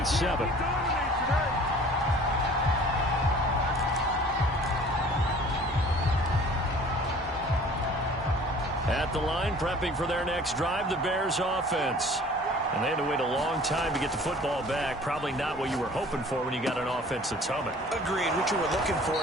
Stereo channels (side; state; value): both; normal; correlation 0.49